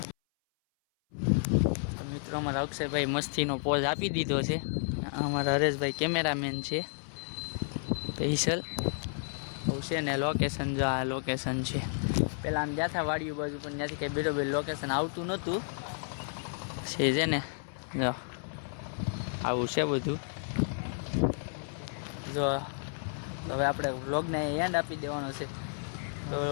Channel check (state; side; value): silent; right; 57 dB below the other